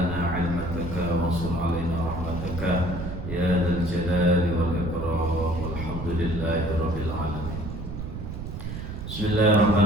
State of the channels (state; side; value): noise; right; rumble, 7 dB below the sound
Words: 'ilmataka wa ansur 'alaina rahmataka ya dzal jalali wal ikram. Walhamdulillahi rabbil alamin.